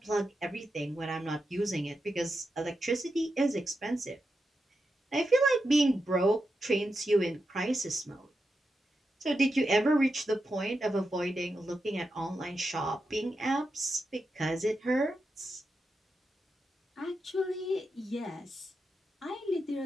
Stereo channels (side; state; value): both; normal; correlation 0.88